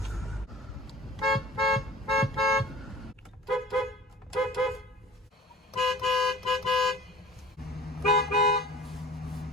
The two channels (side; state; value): both; normal; correlation 0.42